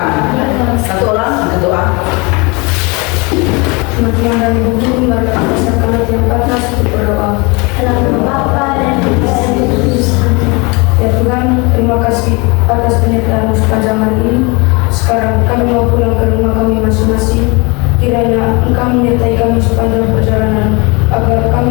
Satu orang berdoa. Semakin dari bumi mereka pasarkan yang panas untuk berdoa. Dalam Bapa dan Putra dan Roh Kudus. Ya Tuhan, terima kasih atas penyertaan sepanjang hari ini. Sekarang kami mau pulang ke rumah kami masing-masing. Kiranya Engkau menyertai kami sepanjang perjalanan, agar kami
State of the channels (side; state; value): right; quieter; 28.0 dB